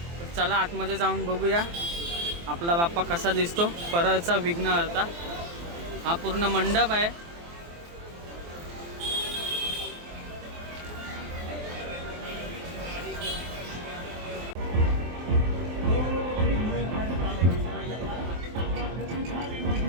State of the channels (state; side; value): late; left; 23 ms